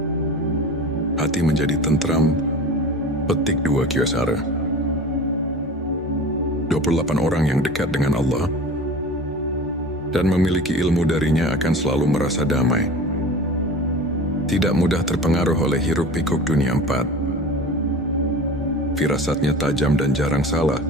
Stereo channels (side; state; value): both; normal; correlation 0.36